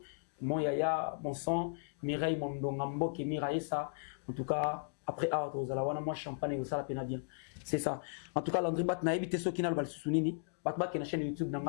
mon yaya, mon sang, Mireille, mon dongambo, qui Mireille ça. En tout cas, après Out, aux alawana, moi champagne et ça la peine bien. C'est ça. En tout cas, Landry Bat n'a évité ceux qui n'ont pas le souvenir. Batbat qui est la chaîne YouTube n'a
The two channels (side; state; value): right; silent; digital silence